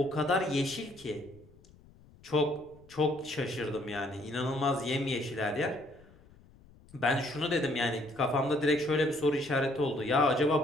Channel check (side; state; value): left; noise; rumble, 25 dB below the sound